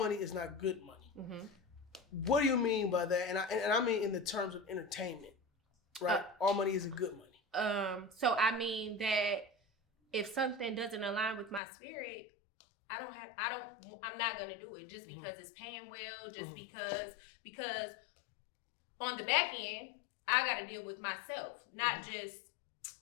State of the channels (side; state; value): right; drops out; at 11.6 s